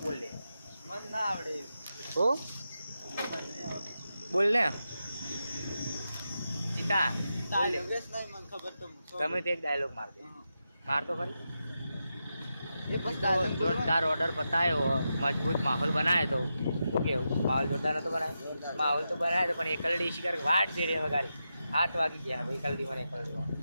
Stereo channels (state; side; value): inverted; both; correlation -0.89